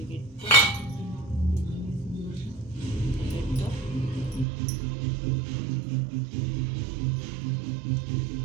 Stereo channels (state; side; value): drops out; left; at 4.5 s